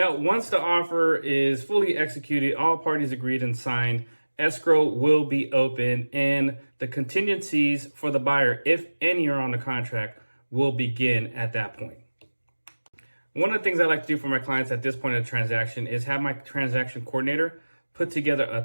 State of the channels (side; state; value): both; inverted; correlation -1.00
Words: once the offer is fully executed, all parties agreed and signed, escrow will be open and the contingencies for the buyer, if any are on the contract, will begin at that point. One of the things I like to do for my clients at this point of the transaction is have my transaction coordinator put together a